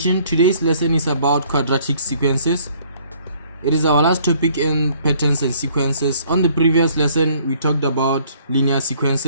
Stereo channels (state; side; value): inverted; both; correlation -0.60